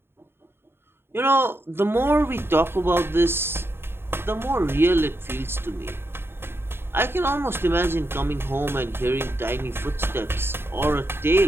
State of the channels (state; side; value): late; left; 0.11 ms